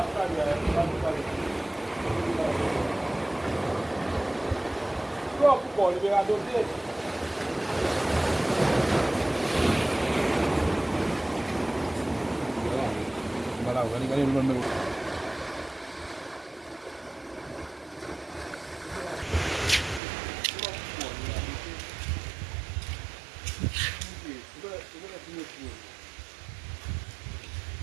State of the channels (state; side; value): drops out; left; at 20.0 s